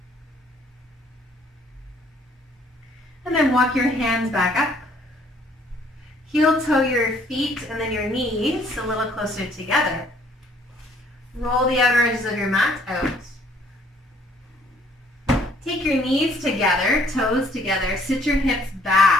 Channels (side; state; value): both; normal; correlation 0.62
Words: And then walk your hands back up. Heel toe your feet and then your knees a little closer together. Roll the outer edges of your mat out. Take your knees together, toes together. Sit your hips